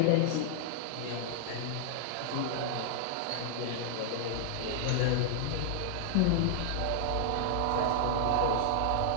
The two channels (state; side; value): different; both; correlation -0.01